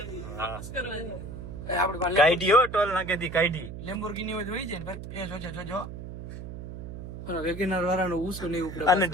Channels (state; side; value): noise; right; hum, 10 dB below the sound